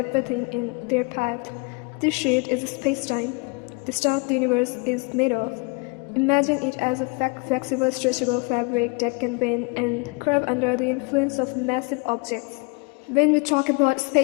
in their path. This sheet is space-time, the stuff the universe is made of. Imagine it as a flexible, stretchable fabric that can bend and curve under the influence of massive objects. When we talk about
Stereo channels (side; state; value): right; quieter; 30.8 dB